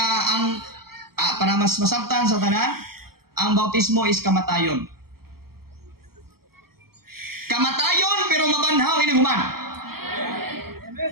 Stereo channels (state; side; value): late; left; 0.95 ms